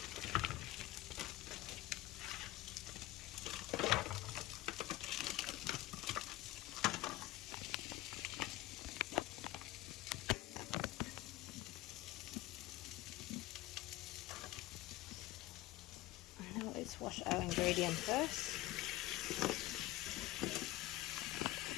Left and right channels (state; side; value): quieter; right; 17.2 dB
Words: Now let's wash our ingredient first.